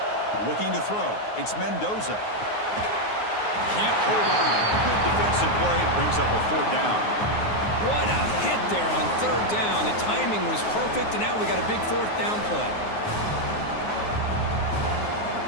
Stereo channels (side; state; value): right; late; 9.5 ms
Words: Looking to throw. It's Mendoza. Can't hold on. Good defensive play. Brings up a 4th down. What a hit there on 3rd down. The timing was perfect, and now we got a big 4th down play.